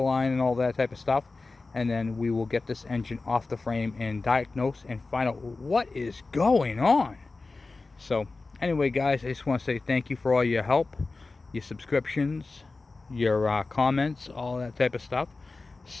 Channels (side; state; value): right; quieter; 3.7 dB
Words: line and all that type of stuff, and then we will get this engine off the frame and diagnose and find out what is going on. So anyway, guys, I just want to say thank you for all your help, your subscriptions, your comments, all that type of stuff.